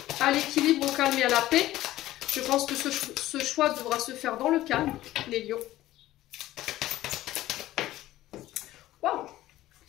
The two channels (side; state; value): right; quieter; 15.2 dB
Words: à l'équilibre, au calme et à la paix. Je pense que ce choix devra se faire dans le calme, les lions. Waouh,